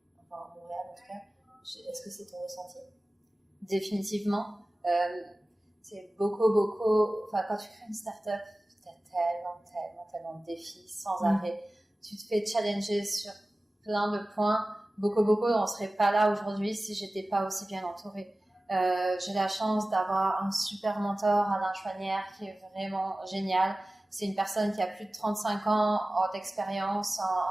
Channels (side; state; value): both; normal; correlation 0.97